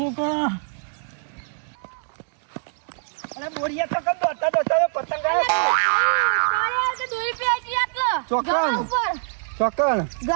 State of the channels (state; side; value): silent; left; 58 dB below the other